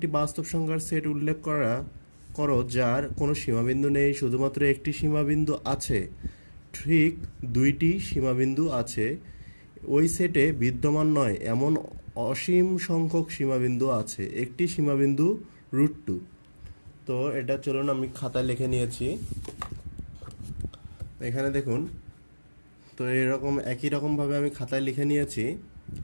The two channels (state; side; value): inverted; both; correlation -1.00